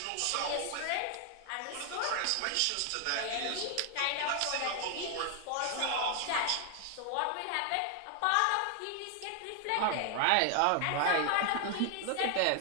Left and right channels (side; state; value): both; different; correlation 0.00